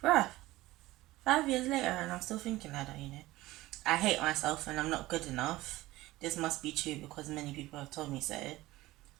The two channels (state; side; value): quieter; left; 17.9 dB